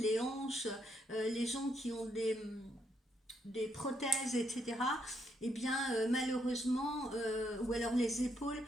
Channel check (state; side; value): normal; both; correlation 0.76